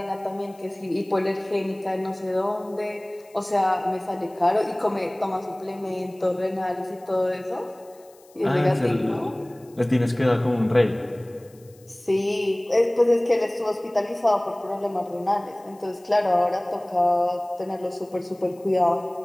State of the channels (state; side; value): noise; left; hiss, 29 dB below the sound